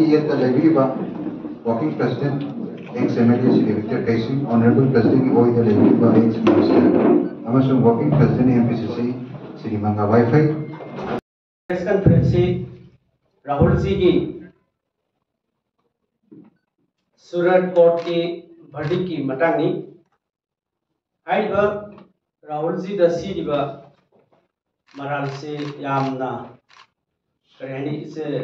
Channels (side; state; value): both; identical; correlation 1.00